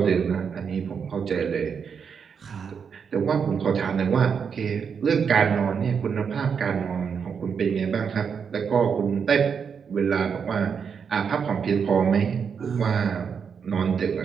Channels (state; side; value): quieter; left; 6.6 dB